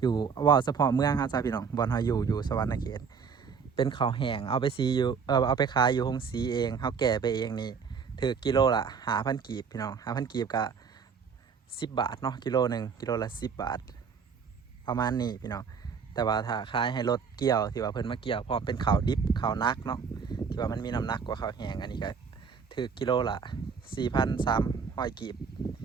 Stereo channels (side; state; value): left; quieter; 6.0 dB